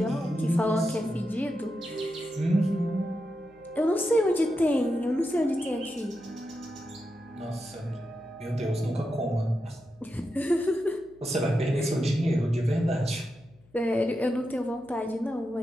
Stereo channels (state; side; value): noise; left; hum, 29 dB below the sound